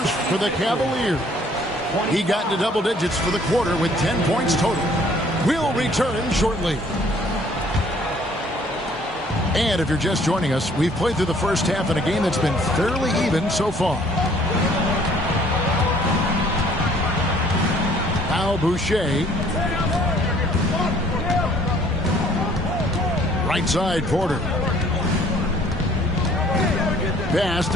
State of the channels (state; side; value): normal; both; correlation 0.58